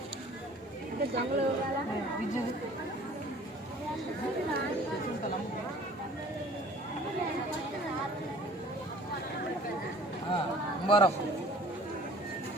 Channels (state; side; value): normal; both; correlation 0.50